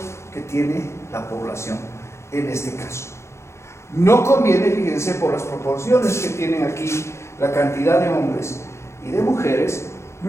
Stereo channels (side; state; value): right; late; 0.13 ms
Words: que tiene la población en este caso. No conviene, fíjense, por las proporciones que tienen aquí la cantidad de hombres y de mujeres,